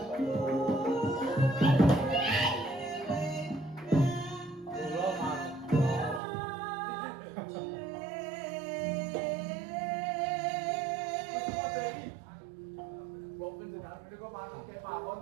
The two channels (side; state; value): left; drops out; at 6.2 s